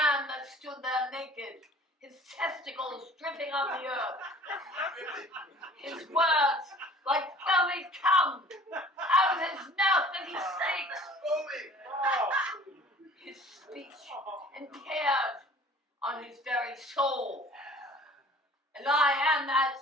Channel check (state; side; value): normal; both; correlation 0.49